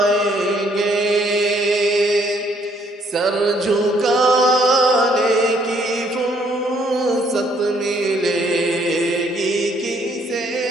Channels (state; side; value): normal; both; correlation 0.66